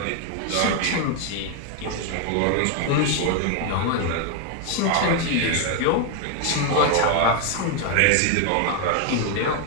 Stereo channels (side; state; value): both; different; correlation 0.01